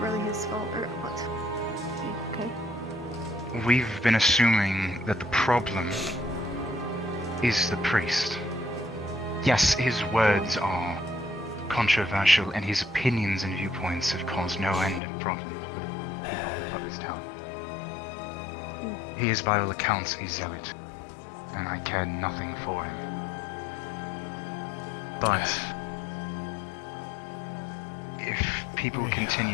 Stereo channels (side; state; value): right; drops out; at 15.0 s